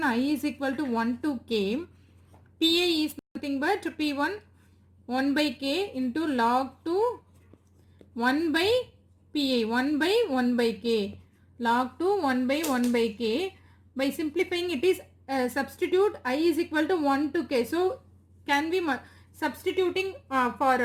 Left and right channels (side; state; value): both; identical; correlation 1.00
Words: I is equal to 1 to k. Pi is nothing but P1 1 by k into log 2 1 by pi, 1 by 1 by k, log 2 1 by 1 by k. By simplifying, it is substitute I is equal to 1 to k. So can we substituting